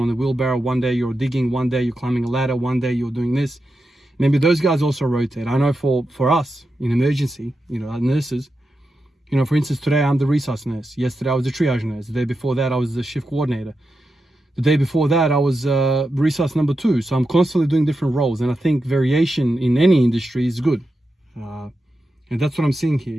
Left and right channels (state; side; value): normal; both; correlation 0.88